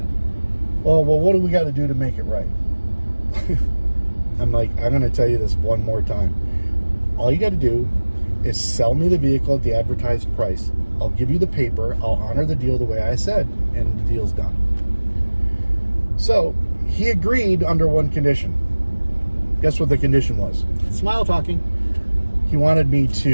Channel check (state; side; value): inverted; both; correlation -1.00